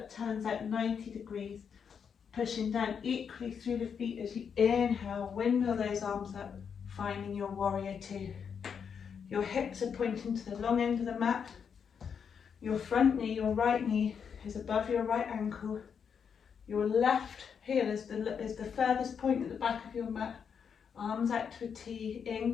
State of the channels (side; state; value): right; quieter; 6.9 dB